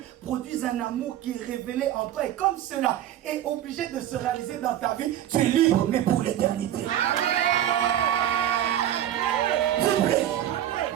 produisent un amour qui est révélé en toi. Et comme cela est obligé de se réaliser dans ta vie, tu es libre, mais pour l'éternité. Vibrez.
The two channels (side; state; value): left; quieter; 11.6 dB